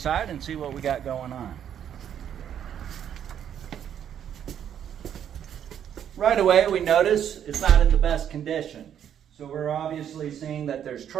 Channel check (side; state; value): left; quieter; 9.4 dB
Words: and see what we got going on. Right away, we notice it's not in the best condition. So we're obviously seeing that there's